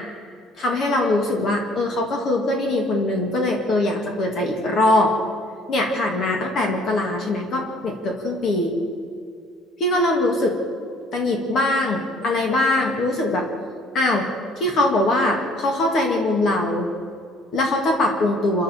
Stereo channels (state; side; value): normal; both; correlation 0.57